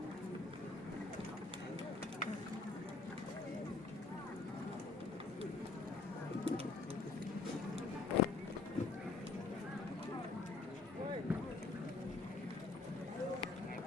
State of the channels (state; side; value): quieter; right; 3.8 dB